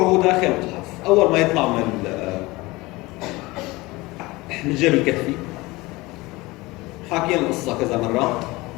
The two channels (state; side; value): quieter; right; 21.7 dB